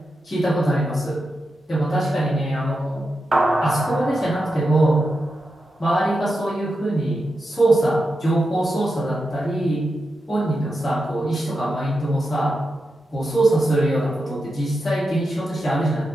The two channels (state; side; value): normal; both; correlation 0.88